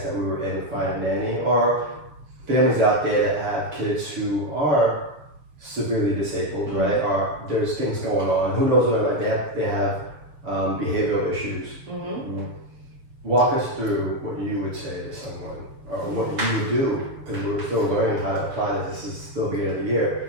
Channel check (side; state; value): left; late; 6.9 ms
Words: that we were in to find a nanny, or families out there that have kids who are severely disabled, right? Or there's things going on. Who knows what, like they have behavioral issues. Walk us through what you would say to someone, or what you would do, because we're still learning how to apply this. This is still the beginning of the